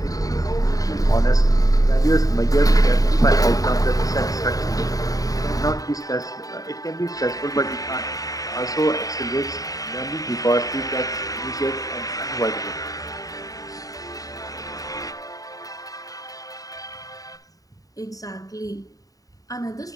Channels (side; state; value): right; late; 0.17 ms